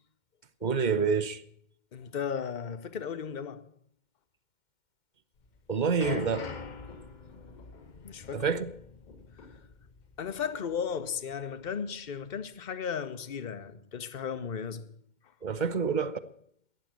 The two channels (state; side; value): late; right; 2.1 ms